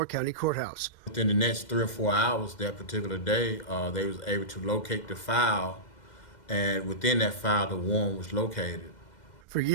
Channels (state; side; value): late; right; 2.1 ms